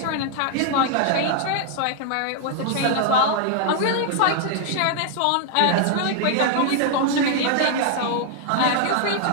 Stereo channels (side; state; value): both; different; correlation 0.00